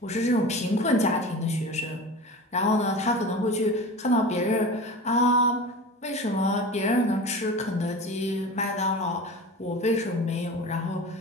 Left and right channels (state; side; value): normal; both; correlation 0.33